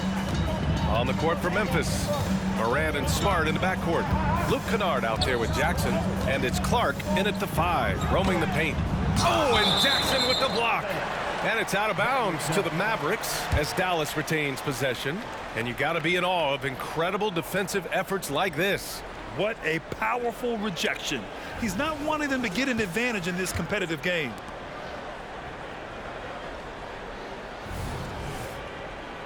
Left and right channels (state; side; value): identical; both; correlation 1.00